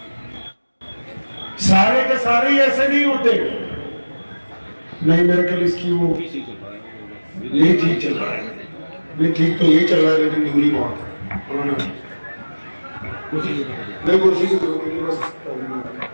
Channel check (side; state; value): both; inverted; correlation -1.00